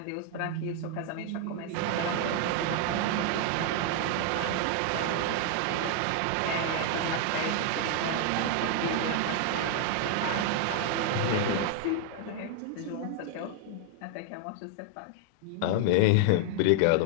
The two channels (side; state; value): both; different; correlation 0.00